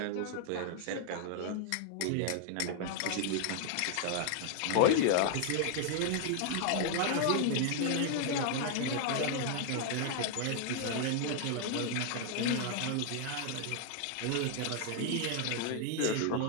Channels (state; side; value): different; both; correlation 0.00